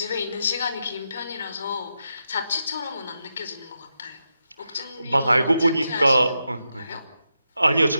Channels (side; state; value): both; inverted; correlation -0.86